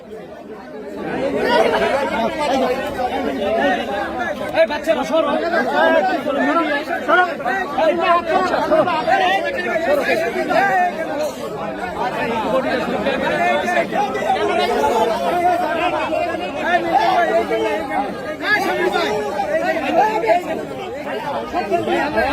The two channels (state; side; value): identical; both; correlation 1.00